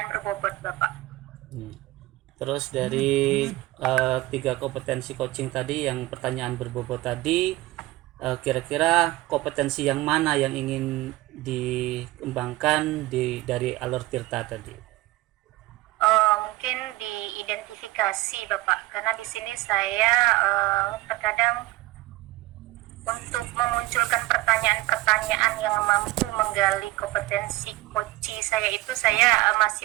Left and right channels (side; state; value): left; quieter; 19.1 dB